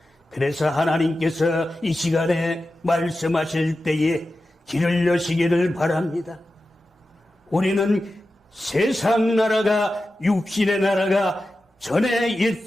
그래서 하나님께서 이 시간에 말씀하실 때에 길을 여시기를 바랍니다. 우리는 세상 나라가, 육신의 나라가 전에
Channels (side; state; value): both; normal; correlation 0.93